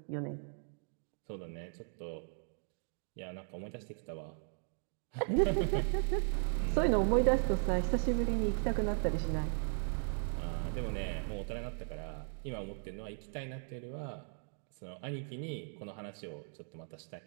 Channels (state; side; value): silent; left; 53 dB below the other